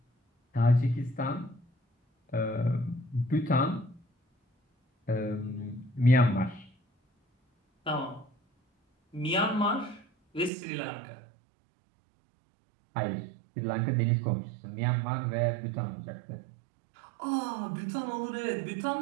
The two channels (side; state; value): left; drops out; at 10.5 s